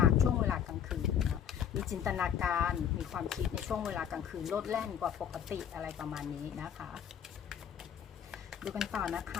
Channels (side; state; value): right; quieter; 8.6 dB